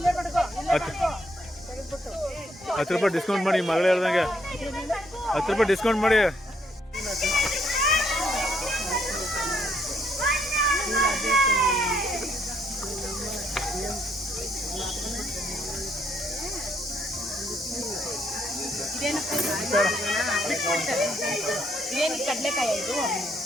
10 ಡಿಸ್ಕೌಂಟ್ ಮಾಡಿ, ಮಗಳು ಹೇಳ್ದಂಗೆ ₹10 ಡಿಸ್ಕೌಂಟ್ ಮಾಡಿ. ಇದೇನು ಕಡಲೆಕಾಯಿ ಇದು?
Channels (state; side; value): normal; both; correlation 0.71